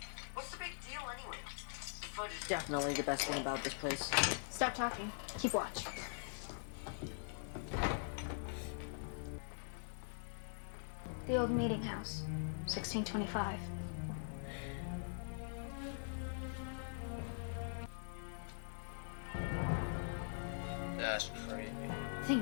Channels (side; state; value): right; silent; digital silence